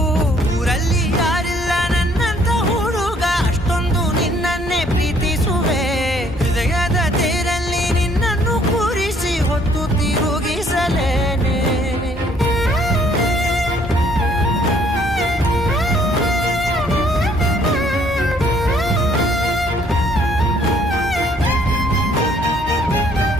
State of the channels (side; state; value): both; normal; correlation 0.63